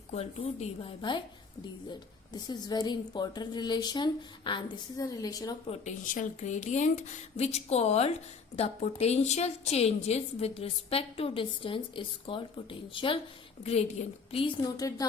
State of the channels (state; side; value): quieter; right; 5.0 dB